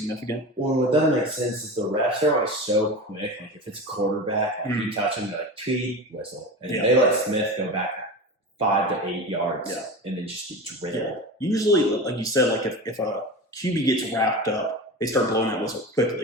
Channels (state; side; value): normal; both; correlation 0.28